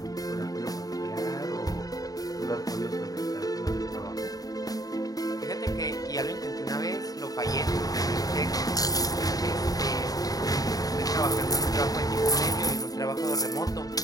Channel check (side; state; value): right; late; 0.18 ms